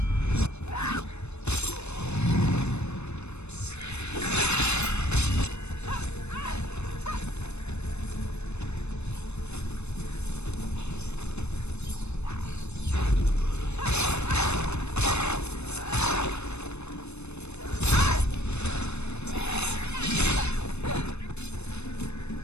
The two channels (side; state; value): right; late; 0.81 ms